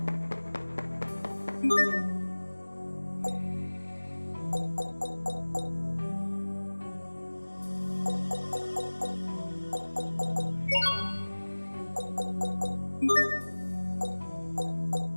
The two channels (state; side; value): inverted; both; correlation -1.00